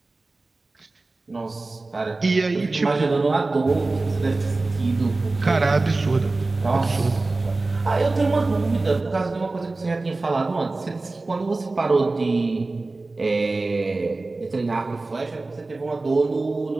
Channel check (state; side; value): quieter; left; 3.3 dB